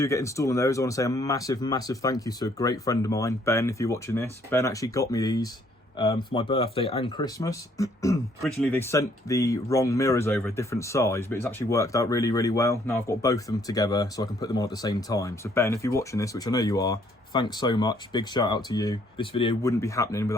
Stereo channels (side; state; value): both; normal; correlation 0.65